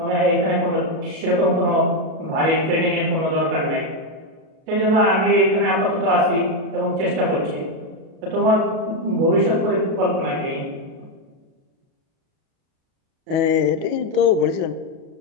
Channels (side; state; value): left; late; 37 ms